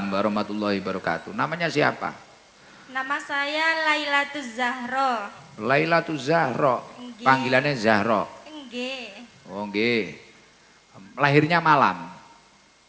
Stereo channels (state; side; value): identical; both; correlation 1.00